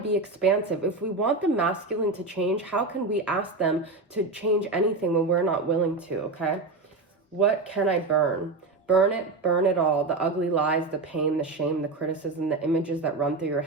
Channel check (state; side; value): quieter; left; 3.6 dB